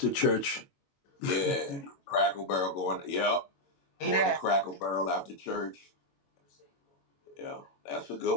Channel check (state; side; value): late; right; 21 ms